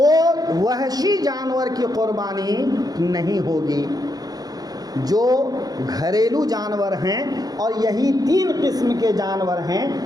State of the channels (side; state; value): left; late; 0.19 ms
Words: وحشی جانور کی قربانی نہیں ہوگی۔ جو گھریلو جانور ہیں اور یہی 3 قسم کے جانور ہیں،